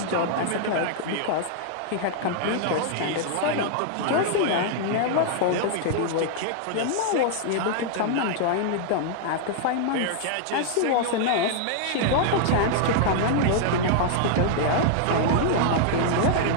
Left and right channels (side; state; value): both; different; correlation -0.01